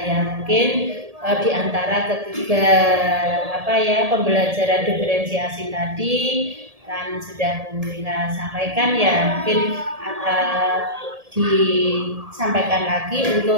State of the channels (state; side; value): late; left; 1.7 ms